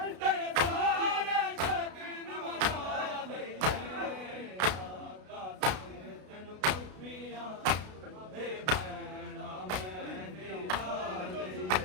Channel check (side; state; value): left; late; 33 ms